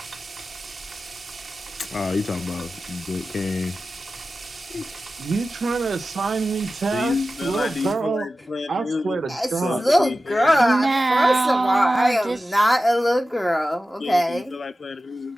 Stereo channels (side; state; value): both; normal; correlation 0.94